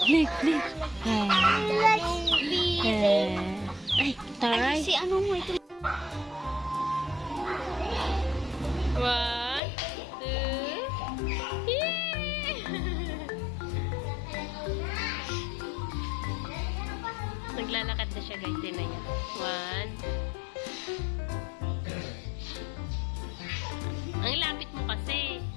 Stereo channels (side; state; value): right; drops out; at 9.6 s